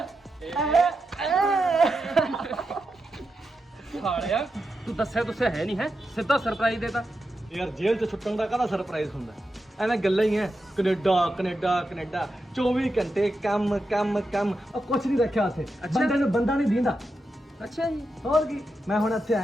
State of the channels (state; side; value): normal; both; correlation 0.88